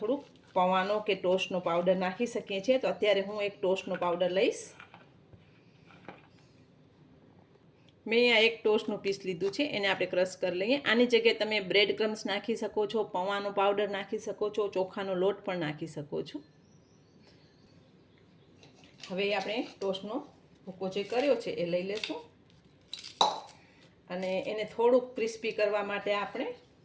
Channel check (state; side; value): identical; both; correlation 1.00